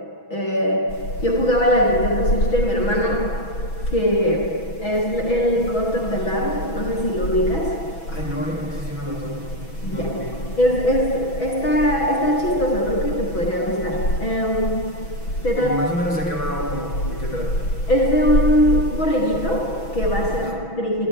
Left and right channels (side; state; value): right; late; 6.1 ms